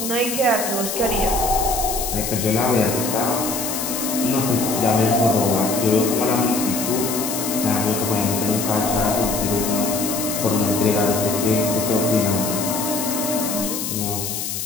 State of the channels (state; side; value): noise; left; hiss, 4 dB below the sound